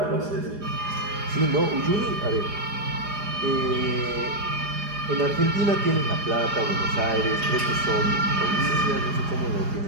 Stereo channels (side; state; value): left; late; 4.9 ms